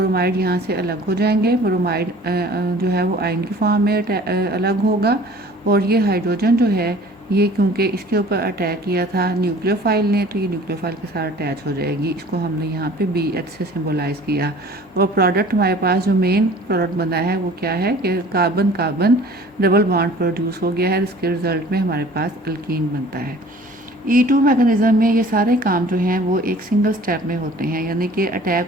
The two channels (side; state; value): both; normal; correlation 0.48